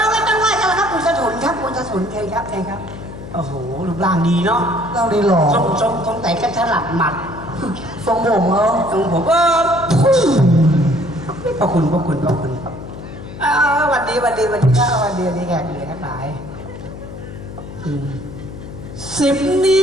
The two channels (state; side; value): noise; left; hum, 13 dB below the sound